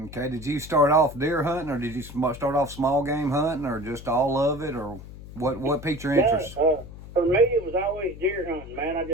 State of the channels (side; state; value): left; noise; hum, 15 dB below the sound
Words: Okay, did you start off deer hunting, or did you start off small game hunting, or just all of it, or what piqued your interest? For me, it was always deer hunting, man. I